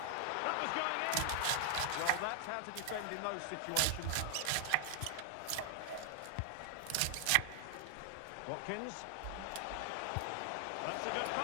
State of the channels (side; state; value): both; different; correlation 0.00